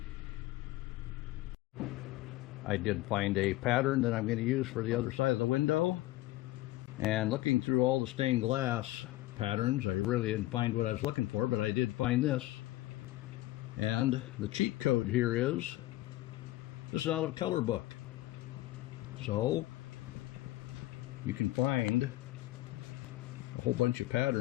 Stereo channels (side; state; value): right; quieter; 17.2 dB